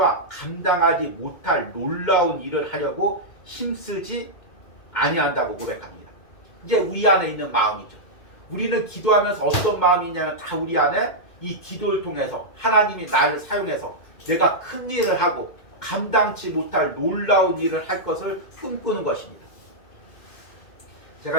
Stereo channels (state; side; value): late; right; 2.2 ms